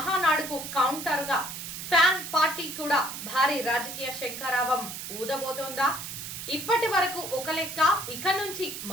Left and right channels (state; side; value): noise; right; hiss, 8 dB below the sound